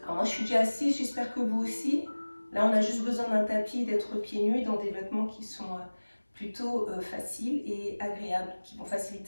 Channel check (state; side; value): inverted; both; correlation -1.00